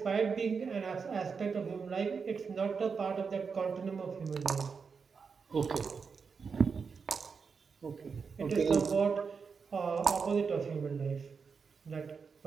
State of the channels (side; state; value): left; quieter; 5.5 dB